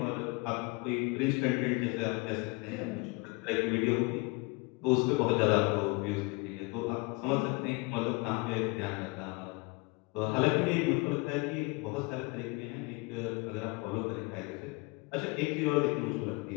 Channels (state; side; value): quieter; right; 27.9 dB